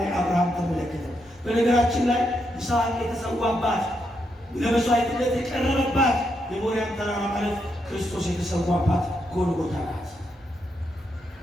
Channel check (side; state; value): both; normal; correlation 0.81